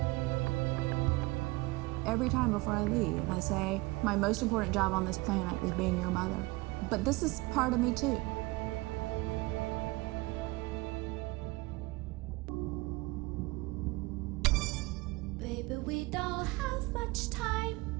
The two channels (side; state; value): left; quieter; 22.6 dB